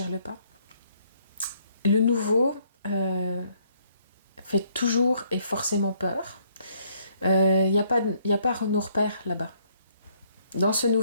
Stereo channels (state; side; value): inverted; both; correlation -0.67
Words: le pas. Le nouveau fait toujours et forcément peur. Il n'y a pas nos repères là-bas. Dans ce